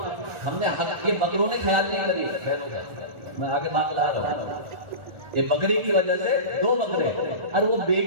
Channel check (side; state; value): left; late; 1.4 ms